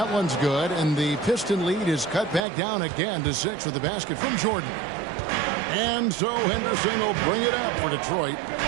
one's good, and the Piston lead is cut back down again to 6 with the basket from Jordan. And so Henderson will bring it up for Detroit.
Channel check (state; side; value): drops out; left; at 2.4 s